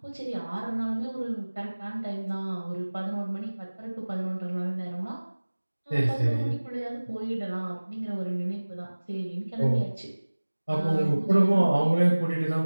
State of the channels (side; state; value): both; inverted; correlation -1.00